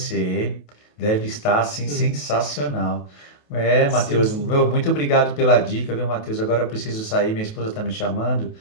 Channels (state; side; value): late; right; 28 ms